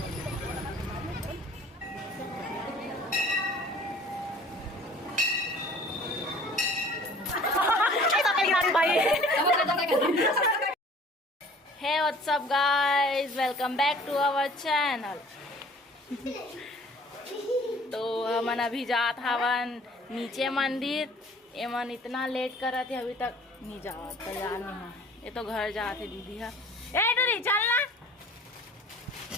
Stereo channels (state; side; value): normal; both; correlation 0.50